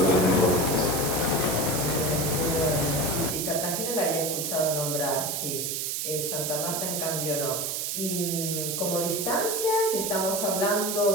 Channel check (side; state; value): right; noise; hiss, 1 dB below the sound